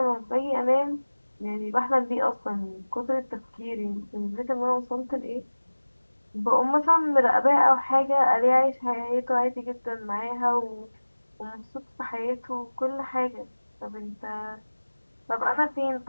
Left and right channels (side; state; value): both; inverted; correlation -1.00